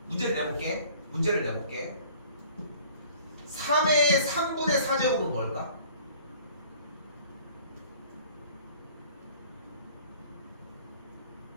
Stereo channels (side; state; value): both; inverted; correlation -0.52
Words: 문제를 내볼게. 3의 3분의 4제곱은 뭘까?